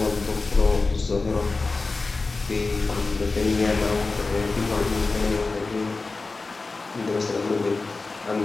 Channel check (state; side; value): quieter; right; 3.7 dB